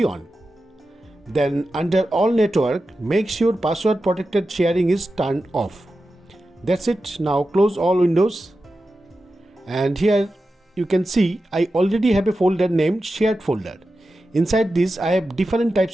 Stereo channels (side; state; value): both; normal; correlation 0.92